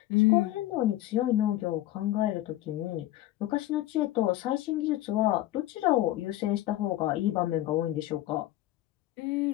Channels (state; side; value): quieter; right; 15.0 dB